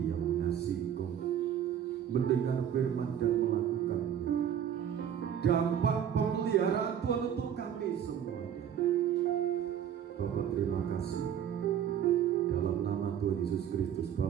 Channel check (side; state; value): left; quieter; 9.3 dB